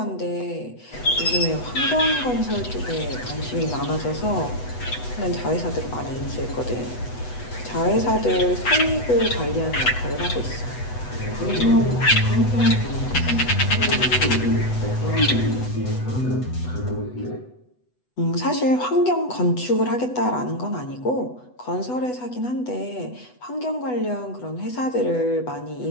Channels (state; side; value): late; right; 8.1 ms